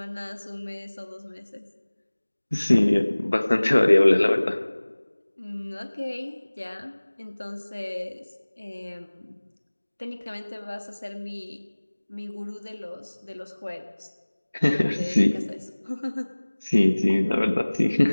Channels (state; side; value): inverted; both; correlation -1.00